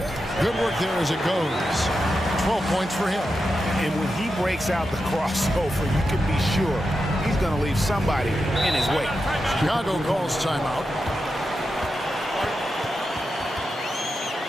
Good work there as it goes. 12 points for him. And when he breaks out the crossover, you can be sure he's going to leave somebody in his way. Chicago calls timeout.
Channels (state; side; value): normal; both; correlation 0.88